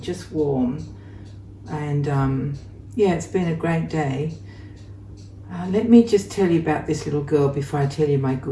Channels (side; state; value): both; identical; correlation 1.00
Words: just warm. And yeah, it's been a great day. Let me just tell you about this little girl before I tell you my